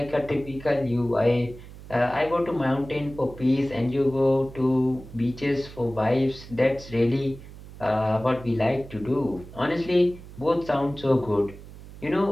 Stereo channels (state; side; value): noise; right; hum, 16 dB below the sound